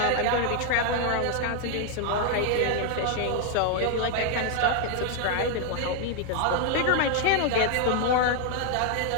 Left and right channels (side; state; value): both; different; correlation 0.00